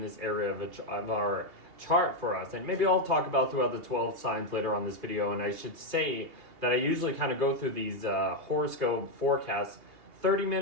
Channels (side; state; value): left; late; 2.8 ms